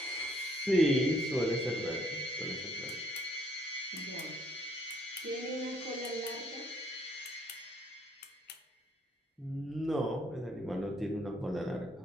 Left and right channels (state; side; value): normal; both; correlation 0.66